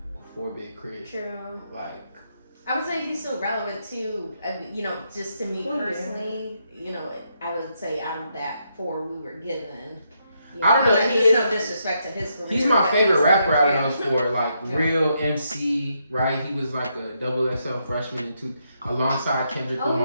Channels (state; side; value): inverted; both; correlation -0.79